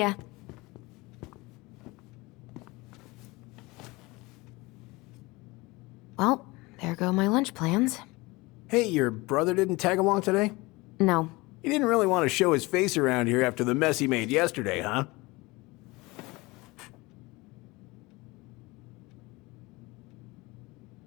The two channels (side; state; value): right; quieter; 23.0 dB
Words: Well, there go my lunch plans. Hey, your brother didn't tag along today? No. He didn't really want to show his face around here after the mess he made yesterday, huh?